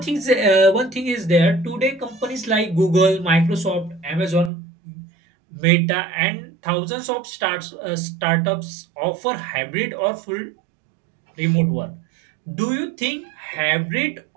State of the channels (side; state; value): left; drops out; at 4.5 s